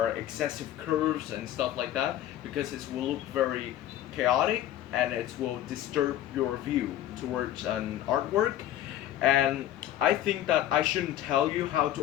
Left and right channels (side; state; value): right; quieter; 12.3 dB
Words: excessive curves and stuff like that, because it will look very chaotic and it will disturb your view towards an artwork. And I think that I shouldn't tell you how